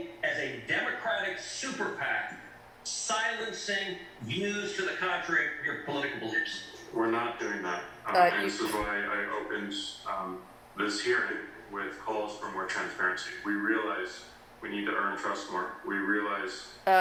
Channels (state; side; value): identical; both; correlation 1.00